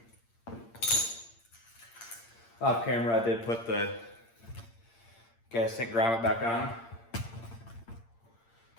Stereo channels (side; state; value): right; late; 8.7 ms